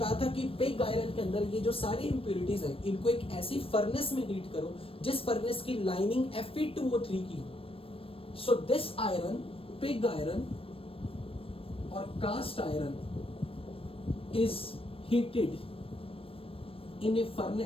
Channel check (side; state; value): right; late; 0.27 ms